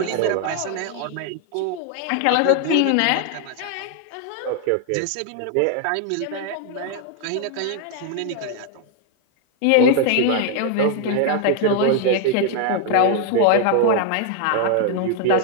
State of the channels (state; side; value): different; both; correlation 0.00